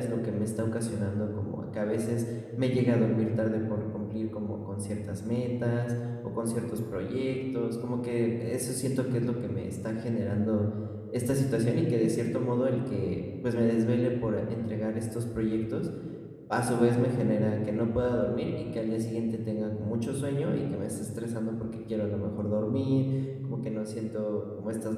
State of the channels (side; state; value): both; identical; correlation 1.00